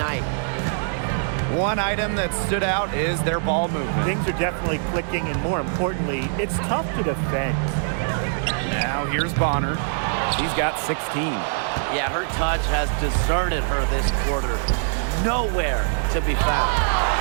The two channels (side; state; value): left; silent; digital silence